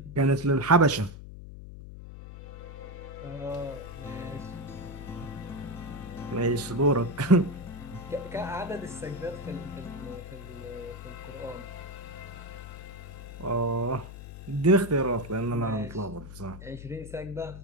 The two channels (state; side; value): noise; left; hum, 12 dB below the sound